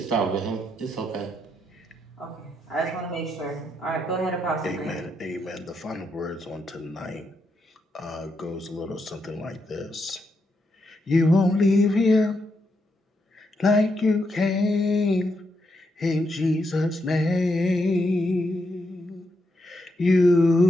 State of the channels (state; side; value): normal; both; correlation 0.81